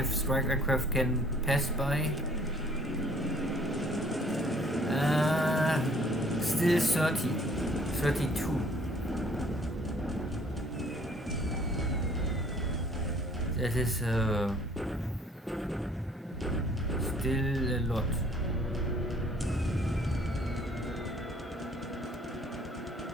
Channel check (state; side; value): normal; both; correlation 0.58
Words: strike aircraft can pass by. Still 32. That is still a lot.